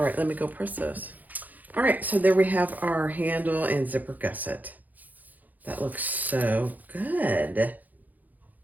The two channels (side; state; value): left; late; 0.082 ms